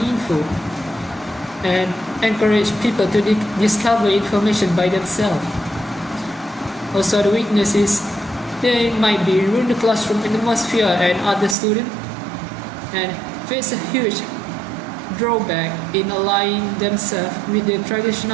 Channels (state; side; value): drops out; left; at 11.6 s